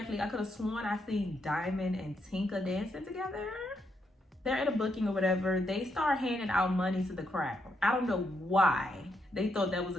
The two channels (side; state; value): both; normal; correlation 0.79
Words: I could have sworn I seen Diamond and Tinka dancing together. They're at a booking or whatever. They start handing out money to the crowd. I don't know why they thought that was